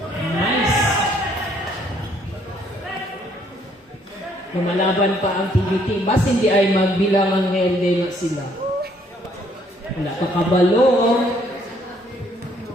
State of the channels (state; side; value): normal; both; correlation 0.66